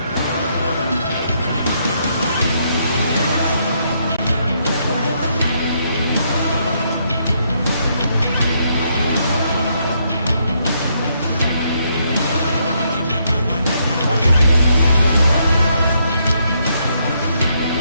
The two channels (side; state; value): both; inverted; correlation -0.75